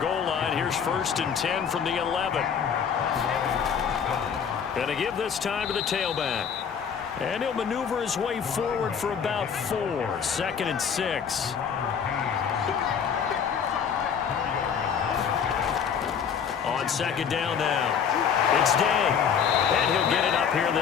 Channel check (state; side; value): quieter; right; 7.3 dB